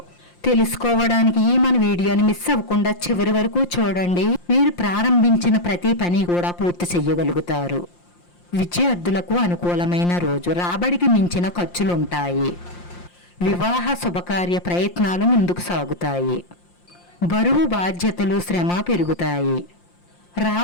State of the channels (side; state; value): right; late; 5.7 ms